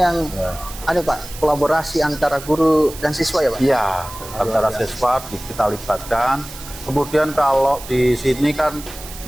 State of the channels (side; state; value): right; noise; hiss, 14 dB below the sound